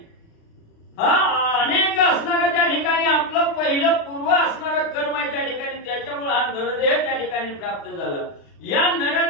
हा अनेक असणारा त्या ठिकाणी आपलं पहिलं पूर्व असणारं कर्म आहे त्या ठिकाणी, त्याच्यामुळे हा नरदेह त्या ठिकाणी प्राप्त झाला. या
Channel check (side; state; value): right; late; 36 ms